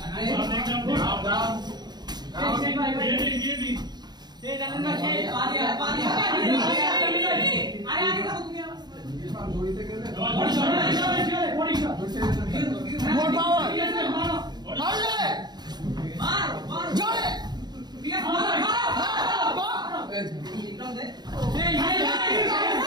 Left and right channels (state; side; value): late; left; 0.20 ms